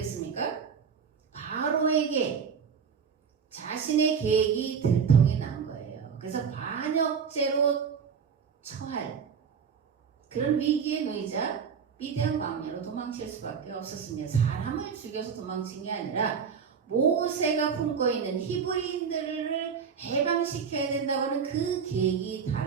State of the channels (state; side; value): quieter; left; 6.5 dB